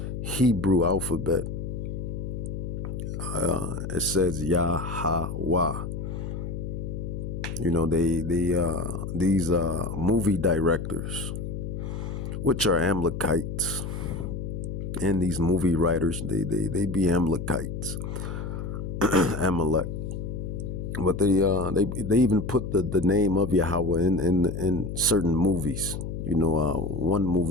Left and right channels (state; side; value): noise; left; hum, 5 dB below the sound